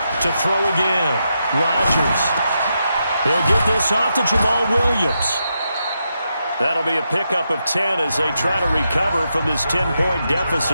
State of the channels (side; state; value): both; inverted; correlation -0.84